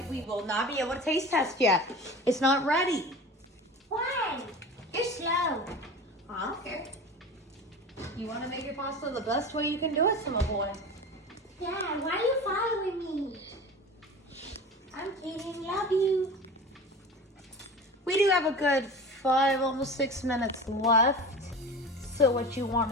we will not be able to taste test yet. It's not ready. Why? You're slow. I don't care. You want to make your pasta the best way you can do it, Simba boy. Dad, why are you following me? I'm kidding. Love you. We do have a good 5, almost 6 minutes left. So what you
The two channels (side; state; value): both; normal; correlation 0.34